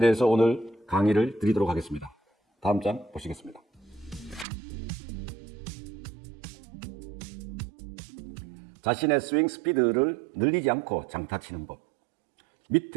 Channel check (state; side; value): drops out; left; at 4.5 s